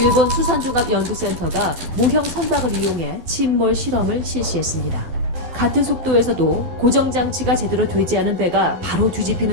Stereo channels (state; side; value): late; left; 12 ms